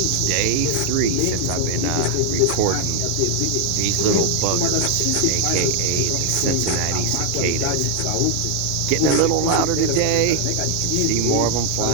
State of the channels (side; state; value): both; different; correlation 0.01